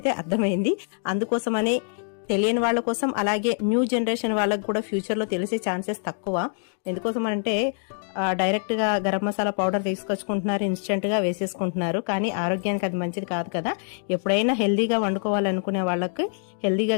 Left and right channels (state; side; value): silent; right; 62 dB below the other